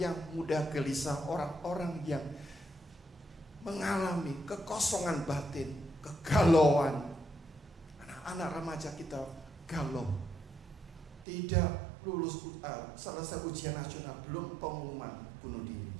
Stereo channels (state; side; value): drops out; left; at 11.2 s